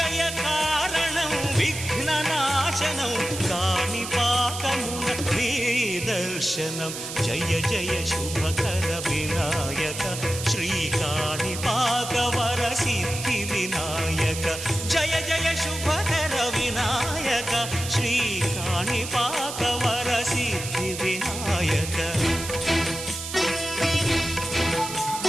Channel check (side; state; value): right; noise; hiss, 8 dB below the sound